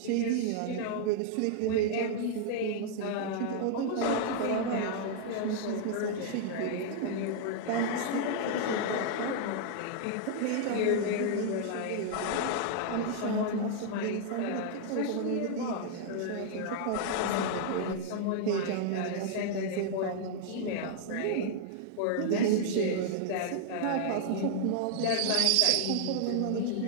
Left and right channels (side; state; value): both; different; correlation -0.01